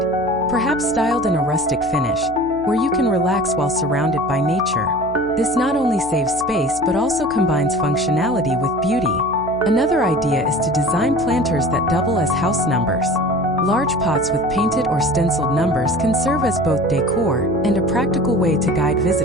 perhaps styled in a rustic finish, where you can relax while surrounded by nature. This not only saves space but also combines functionality with beauty. Another idea is to design planters that double as house numbers. Large pots with painted or stenciled numbers can serve as both decor and a practical way to guide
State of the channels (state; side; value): noise; right; hum, 17 dB below the sound